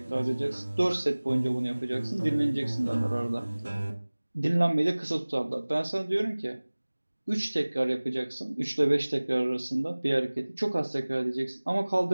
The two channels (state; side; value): inverted; both; correlation -1.00